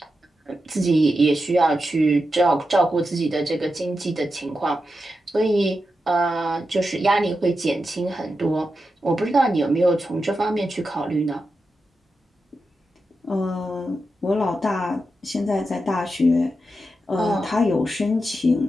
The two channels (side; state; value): both; normal; correlation 0.88